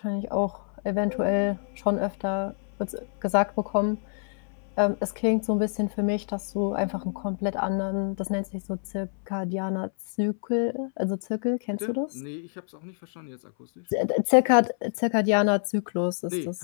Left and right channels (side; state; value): right; silent; 60 dB below the other